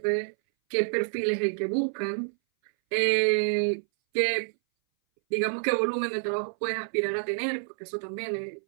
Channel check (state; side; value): silent; left; 59 dB below the other